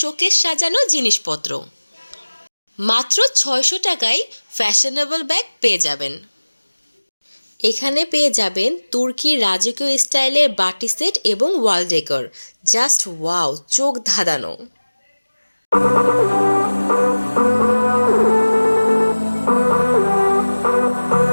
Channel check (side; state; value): both; inverted; correlation -1.00